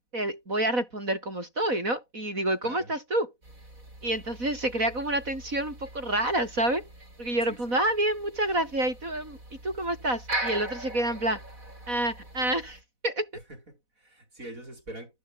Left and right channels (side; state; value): left; late; 4.1 ms